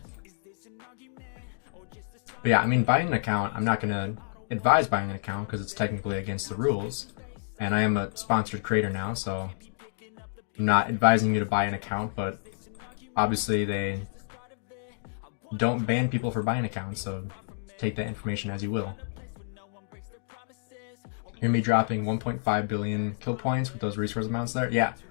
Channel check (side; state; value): right; silent; digital silence